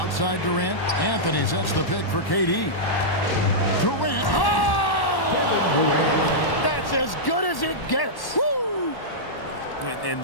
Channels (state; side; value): late; right; 1.1 ms